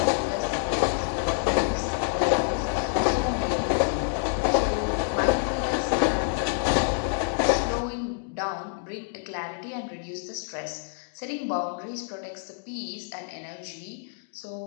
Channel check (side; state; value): right; silent; digital silence